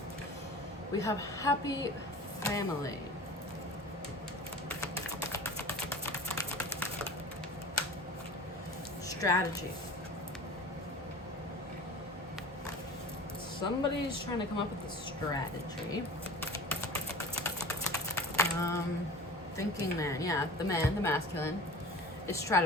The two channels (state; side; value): normal; both; correlation 0.39